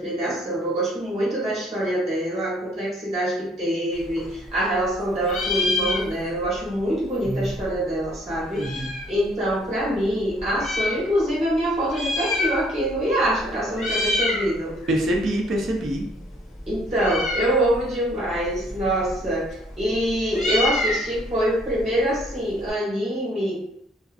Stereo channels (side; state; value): both; normal; correlation 0.61